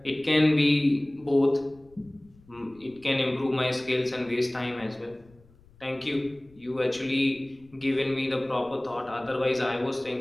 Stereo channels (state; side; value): noise; left; rumble, 28 dB below the sound